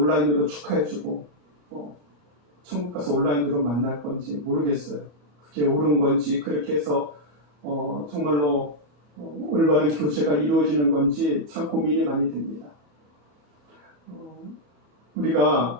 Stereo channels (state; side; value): late; left; 38 ms